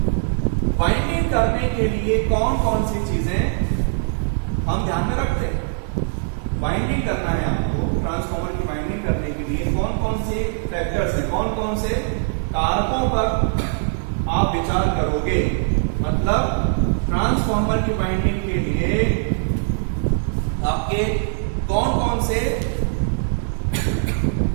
वाइंडिंग करने के लिए कौन कौन सी चीजें हम ध्यान में रखते हैं। वाइंडिंग करना है आपको, ट्रांसफार्मर की वाइंडिंग करने के लिए कौन कौन से फैक्टर्स हैं, कौन कौन से कारकों पर आप विचार करोगे। मतलब ट्रांसफार्मर की वाइंडिंग के लिए आपके कौन कौन से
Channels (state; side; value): silent; left; digital silence